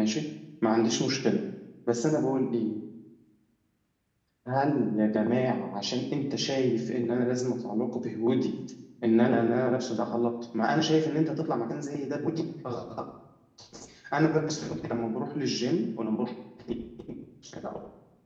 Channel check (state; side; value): identical; both; correlation 1.00